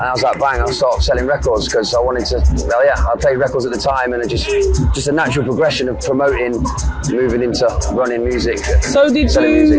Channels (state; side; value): identical; both; correlation 1.00